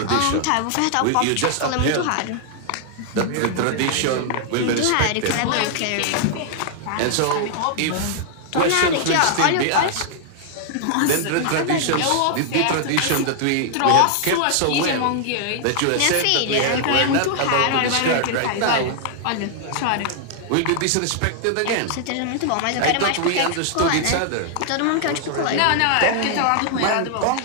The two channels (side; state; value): both; different; correlation -0.01